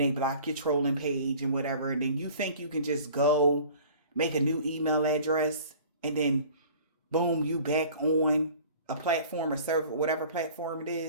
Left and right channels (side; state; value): both; inverted; correlation -0.47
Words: block your trolling page and whatever, and then you think you can just go make a new email address and then boom, you back on a platform or server, whatever platform it